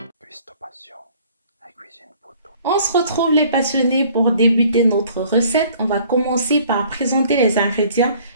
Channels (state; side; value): inverted; both; correlation -0.55